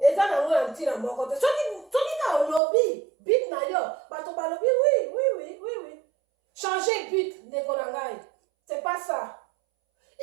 Et ça na un petit na mon côté. Ceux qui ont lobby bit na yom batoba lobby oui. Changer but ne konangai. C'est pas ça.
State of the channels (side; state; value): left; drops out; at 2.6 s